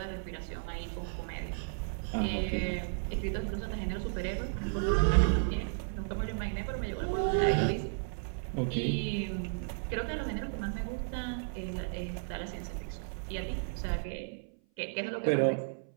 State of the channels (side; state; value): left; silent; 55 dB below the other